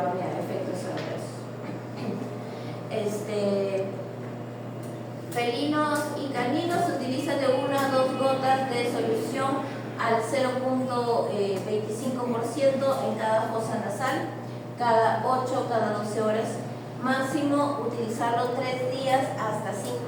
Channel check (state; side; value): identical; both; correlation 1.00